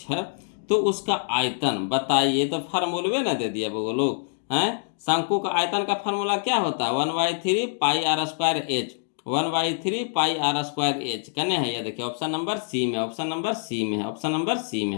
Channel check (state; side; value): silent; right; digital silence